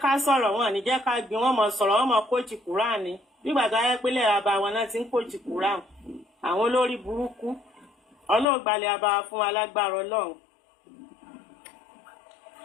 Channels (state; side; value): drops out; right; at 8.5 s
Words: ká sọ̀rọ̀ wọn ò ní jẹ́ ká gbin wọn mọ̀ sọ̀rọ̀ wọn mọ̀ kóòtù Kùránì nígbà tó ayé pélé àbá wọn náà ti ń kóòtù Kùránì àwọn olórí burúkú Ọlọ́run gbalẹ̀ àbá fún wa lágbára Ọlọ́run.